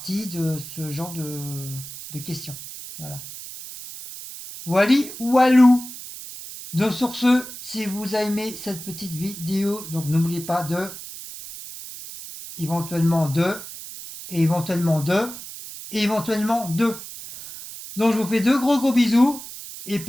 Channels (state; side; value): noise; right; hiss, 12 dB below the sound